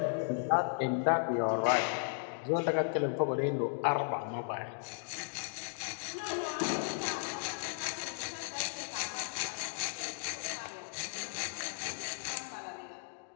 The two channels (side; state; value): right; silent; digital silence